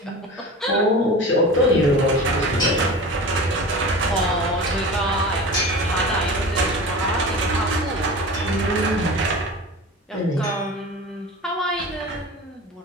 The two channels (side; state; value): both; normal; correlation 0.34